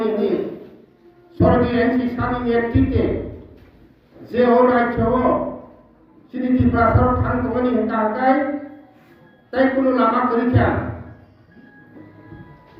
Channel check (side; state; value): both; identical; correlation 1.00